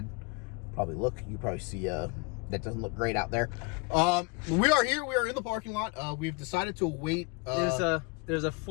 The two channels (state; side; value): quieter; right; 29.2 dB